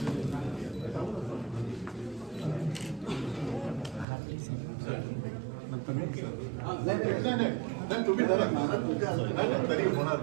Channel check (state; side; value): drops out; left; at 4.0 s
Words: तुम्ही तरी होणार